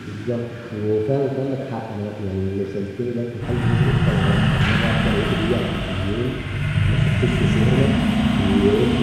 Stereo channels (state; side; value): identical; both; correlation 1.00